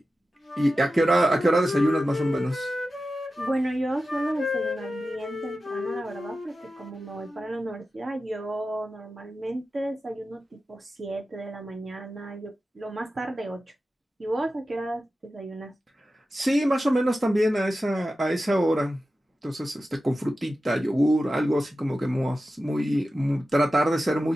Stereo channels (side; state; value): both; normal; correlation 0.93